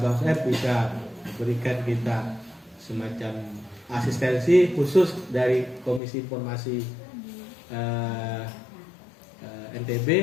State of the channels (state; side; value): drops out; right; at 6.0 s